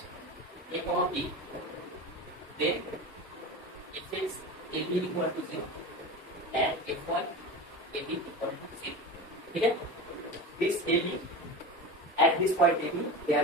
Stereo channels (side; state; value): both; normal; correlation 0.28